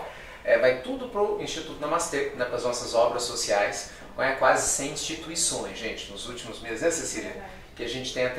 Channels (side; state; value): both; identical; correlation 1.00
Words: Vai tudo para o Instituto Namastê, né, para as nossas obras sociais, quase 100 instituições, gente, nos últimos meses, né, Cecília? Que a gente tem